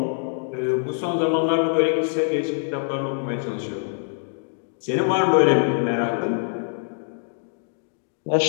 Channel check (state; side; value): silent; right; digital silence